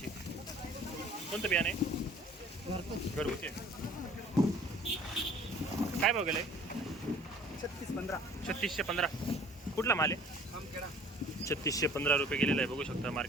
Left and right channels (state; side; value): normal; both; correlation 0.51